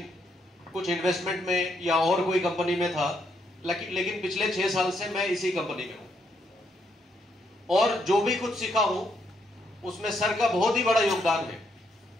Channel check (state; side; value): normal; both; correlation 0.76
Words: कुछ इन्वेस्टमेंट में या और कोई कंपनी में था, लेकिन पिछले 6 साल से मैं इसी कंपनी में हूं और जो भी कुछ सीखा हूं उसमें सर का बहुत ही बड़ा योगदान है।